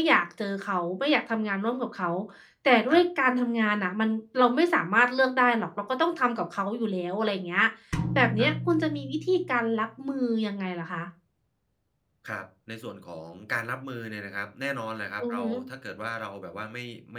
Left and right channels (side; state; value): both; identical; correlation 1.00